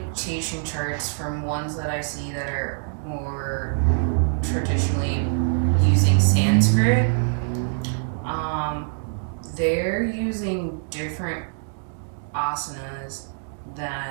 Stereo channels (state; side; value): silent; left; digital silence